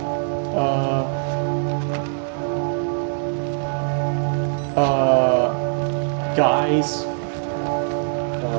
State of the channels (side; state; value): left; silent; digital silence